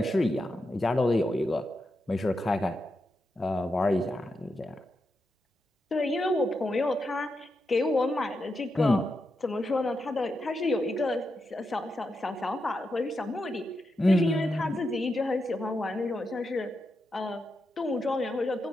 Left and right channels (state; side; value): normal; both; correlation 0.86